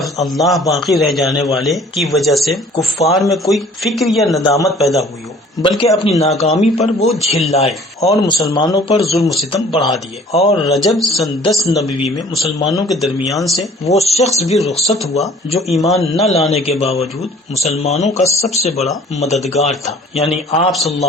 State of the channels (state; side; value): normal; both; correlation 0.52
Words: اللہ باقی رہ جانے والے کی وجہ سے کفار میں کوئی فکر یا ندامت پیدا ہوئی ہو، بلکہ اپنی ناکامی پر وہ جھلائے اور مسلمانوں پر ظلم و ستم بڑھا دیے۔ اور رجب سن 10 نبوی میں مسلمانوں کے درمیان سے وہ شخص بھی رخصت ہوا جو ایمان نہ لانے کے باوجود مسلمانوں کا سب سے بڑا مددگار تھا، یعنی آپ صلی اللہ